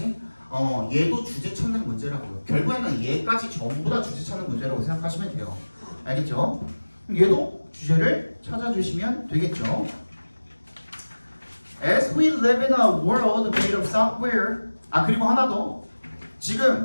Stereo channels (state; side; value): inverted; both; correlation -1.00